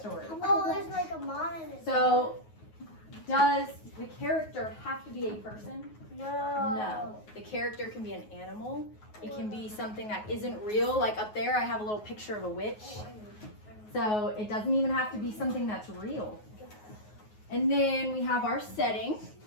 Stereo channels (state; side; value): late; right; 9.4 ms